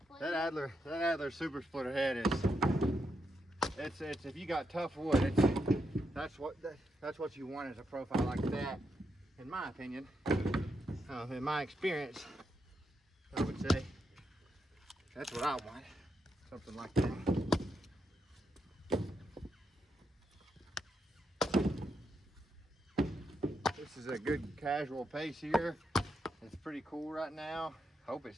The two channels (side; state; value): both; normal; correlation 0.82